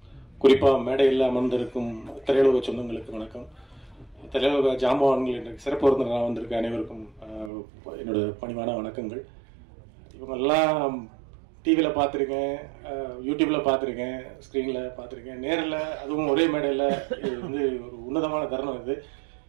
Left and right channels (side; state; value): left; drops out; at 7.5 s